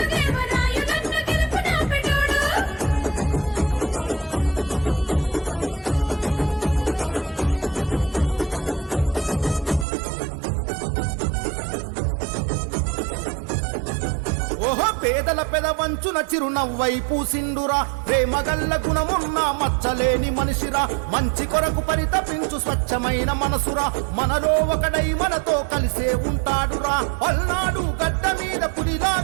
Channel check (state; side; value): drops out; left; at 9.9 s